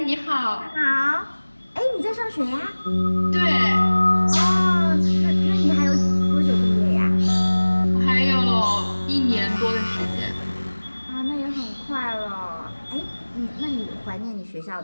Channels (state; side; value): inverted; both; correlation -1.00